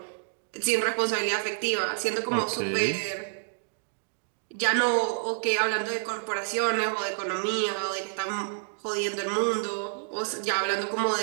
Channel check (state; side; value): silent; left; digital silence